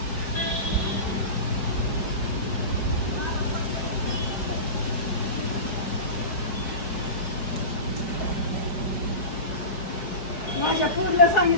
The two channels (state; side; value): late; right; 4.8 ms